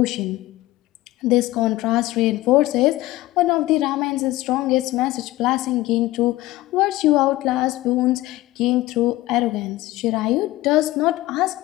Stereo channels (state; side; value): quieter; right; 17.5 dB